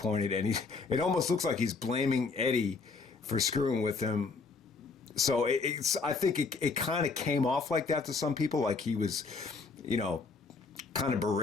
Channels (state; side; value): quieter; right; 4.4 dB